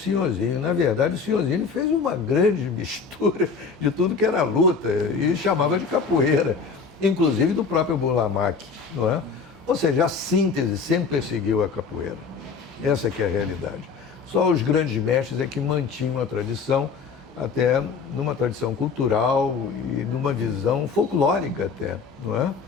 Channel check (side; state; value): right; quieter; 5.3 dB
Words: Na verdade, o Senhorzinho fez uma grande mistura de tudo que era luta e chamava de capoeira, inclusive do próprio Burlamac, não é? Ou seja, a síntese sempre perseguiu a capoeira. Essa que é a realidade. Só os grandes mestres é que mantinham a tradição, até numa tradição cultural e numa visão folclórica até, não é?